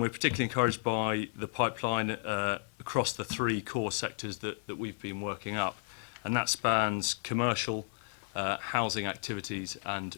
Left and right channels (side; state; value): right; silent; 56 dB below the other